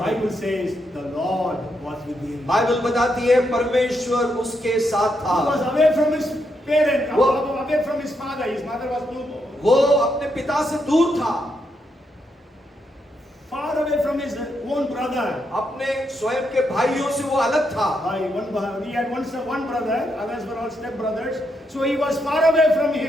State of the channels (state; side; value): normal; both; correlation 0.80